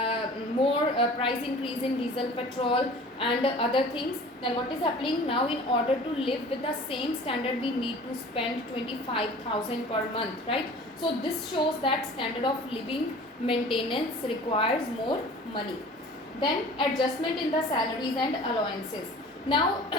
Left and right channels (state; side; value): normal; both; correlation 0.44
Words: more price increase in diesel, petrol and other things, then what is happening now, in order to live with the same standard, we need to spend 25,000 per month, right? So this shows that standard of living maintenance requires more money. Then adjustment in the salaries and allowances. Now